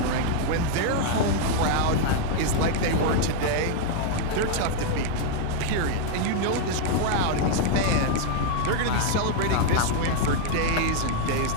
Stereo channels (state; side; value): different; both; correlation 0.00